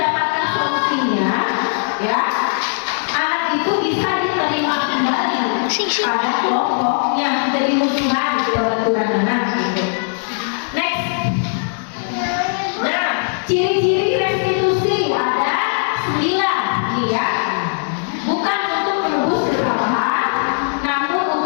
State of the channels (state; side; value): silent; right; 67 dB below the other